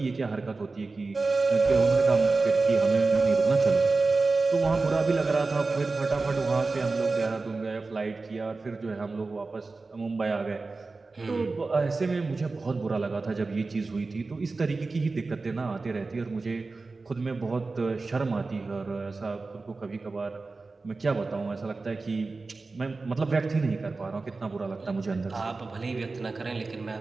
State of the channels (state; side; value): quieter; left; 3.8 dB